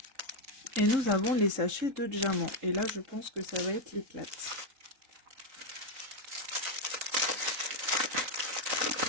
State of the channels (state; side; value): late; left; 3.9 ms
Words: Et nous avons les sachets de diamants. Et là, je pense que ça va être l'éclate.